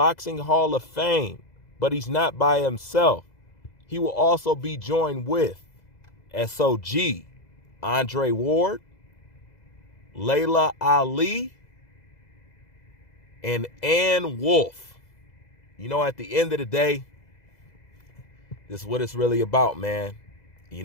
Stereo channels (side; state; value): right; late; 2.0 ms